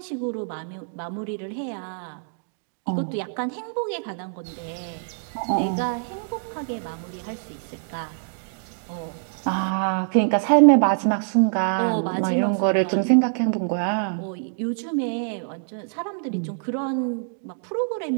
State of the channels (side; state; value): left; silent; digital silence